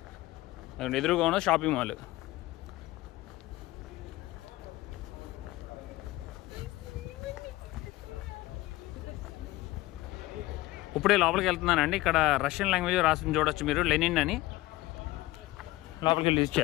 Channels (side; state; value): right; quieter; 18.4 dB